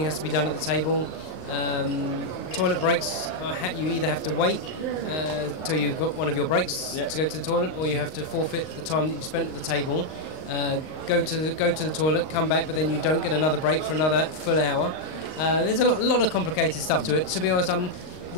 has to be done at the table. Toilet breaks, you either have to wait till you've got one of your breaks to go to the toilet, or you have to forfeit the time that you spent at the table, go to the toilet, come back, but then you don't get another break for another full hour. There's a lot of complicated stuff to it. To be honest,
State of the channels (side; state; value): right; late; 39 ms